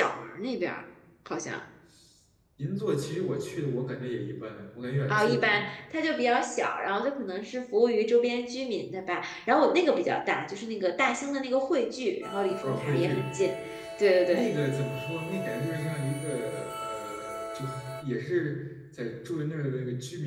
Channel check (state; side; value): identical; both; correlation 1.00